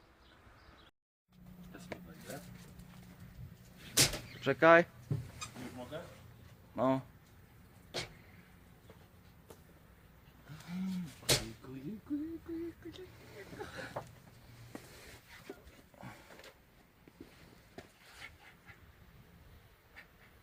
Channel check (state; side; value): identical; both; correlation 1.00